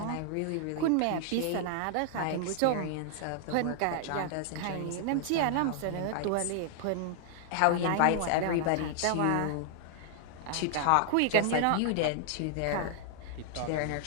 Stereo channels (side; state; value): both; different; correlation 0.00